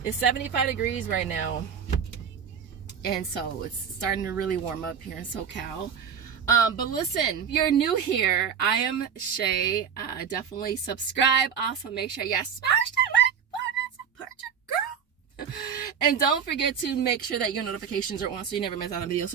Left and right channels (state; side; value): quieter; left; 7.4 dB